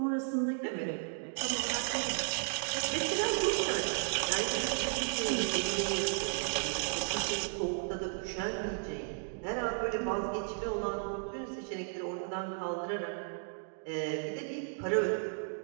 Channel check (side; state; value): left; silent; digital silence